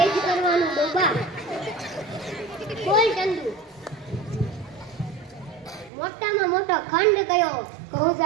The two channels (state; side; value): drops out; left; at 5.9 s